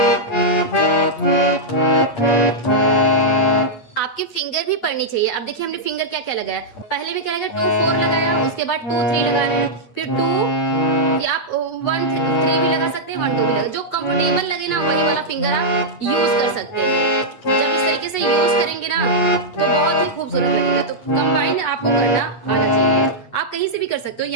आपके फिंगर भी पड़नी चाहिए। अब देखिए हमने फिंगर क्या क्या लगाया, पहले में क्या लगाया 2 4 लगाया, उसके बाद 2 3 लगा रहे हैं, फिर 2 या आप 1 3 भी लगा सकते हैं, 1 2 भी लगा, जो कंफर्टेबल लगे ना वही वाला फिंगर आप यूज कर सकते हैं। जब इस तरीके से यूज करेंगे ना तो बहुत ही खूबसूरत लगेगा। तो कंबाइन आपको करना आना चाहिए। आप कहीं से भी कर सकते हो,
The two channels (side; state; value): right; late; 8.6 ms